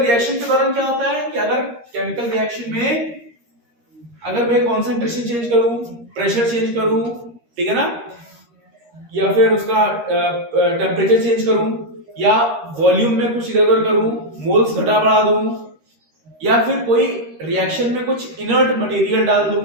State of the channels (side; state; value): left; late; 13 ms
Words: के दौरान क्या होता है कि अगर केमिकल रिएक्शन में अगर मैं कॉन्सेंट्रेशन चेंज करूं, प्रेशर चेंज करूं, ठीक है ना, या फिर उसका टेम्परेचर चेंज करूं, या वॉल्यूम में कुछ इधर उधर करूं, मोल्स घटा बढ़ा दूं, या फिर कोई रिएक्शन में कुछ इनर्ट मटेरियल डाल दूं,